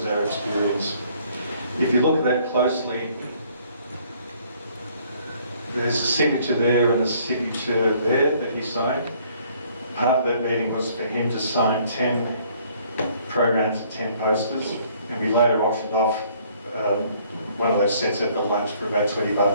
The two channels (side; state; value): both; inverted; correlation -0.62